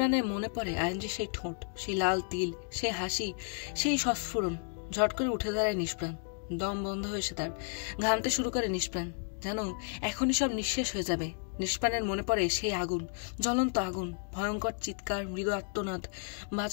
মনে পড়ে আইনজির সেই ঠোঁট, সেই লাল তিল, সেই হাসি, সেই সস্ফুরণ। ঝট করে উঠে দাঁড়ায় নিষ্প্রাণ। দম বন্ধ হয়েছে তার। ঘামতে শুরু করে নিষ্প্রাণ। যেন এখনই সব নিঃশেষ হয়ে যাবে। নিষ্প্রাণের মনে পড়ে সেই আগুন, জ্বলন্ত আগুন, ভয়ঙ্কর চিৎকার, মৃদু আর্তনাদ,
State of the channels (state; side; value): silent; right; 56 dB below the other